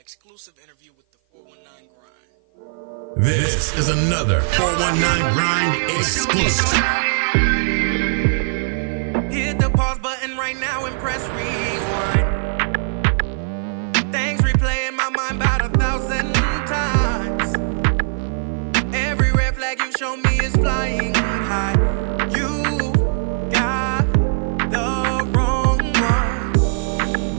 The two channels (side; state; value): left; silent; 55 dB below the other